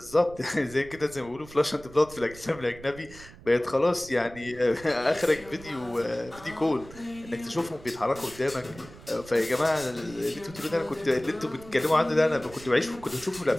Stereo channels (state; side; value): noise; right; rumble, 19 dB below the sound